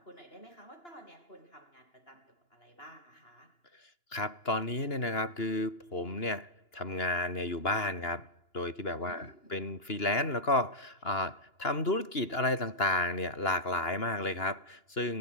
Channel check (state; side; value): late; right; 2.9 ms